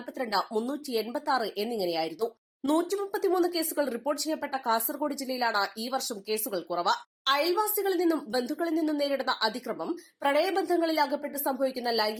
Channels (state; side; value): identical; both; correlation 1.00